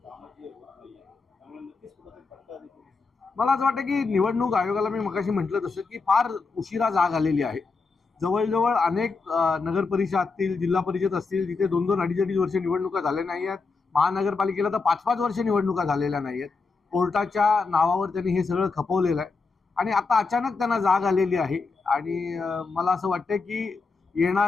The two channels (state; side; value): quieter; right; 4.3 dB